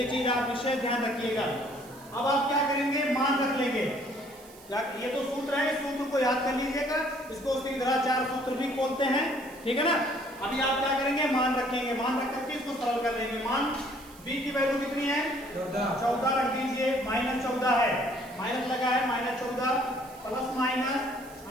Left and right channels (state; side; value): noise; right; hiss, 22 dB below the sound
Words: चीज आप विशेष ध्यान रखिएगा। अब आप क्या करेंगे, मान रख लेंगे। ये तो सूत्र है, इस सूत्र को याद कर लीजिएगा, इसको श्रीधराचार्य सूत्र भी बोलते हैं, ठीक है ना। अभी आप क्या करेंगे, मान रखेंगे, मान रख करके इसको सरल कर लेंगे। मान b की वैल्यू कितनी है 14 रख दीजिए, माइनस 14 है, माइनस लगा है, minus 14 plus minus